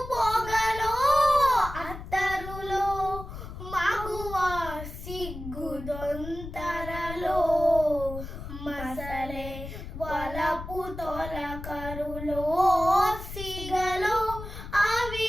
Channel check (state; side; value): noise; left; rumble, 10 dB below the sound